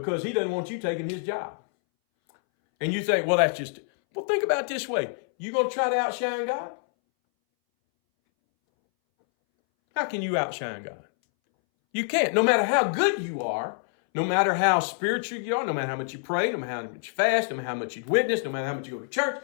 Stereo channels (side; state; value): right; silent; 61 dB below the other